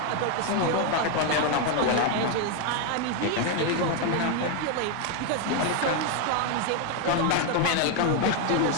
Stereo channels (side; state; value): both; different; correlation 0.01